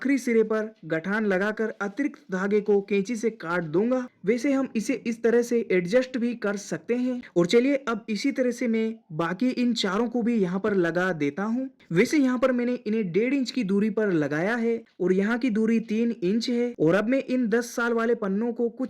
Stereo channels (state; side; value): identical; both; correlation 1.00